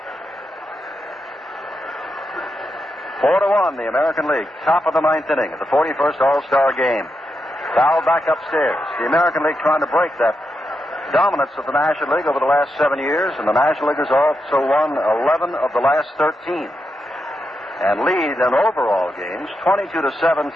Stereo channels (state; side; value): normal; both; correlation 0.85